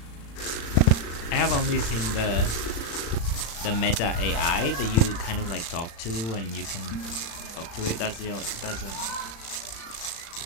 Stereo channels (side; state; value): right; late; 35 ms